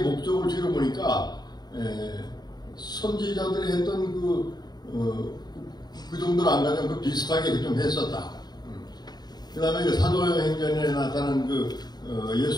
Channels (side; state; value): right; late; 0.20 ms